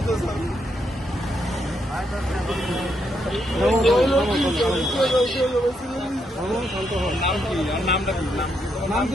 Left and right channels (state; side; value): normal; both; correlation 0.78